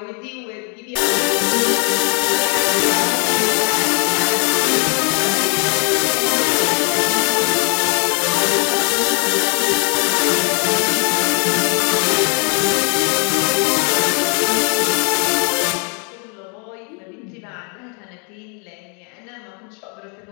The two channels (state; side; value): quieter; right; 38.1 dB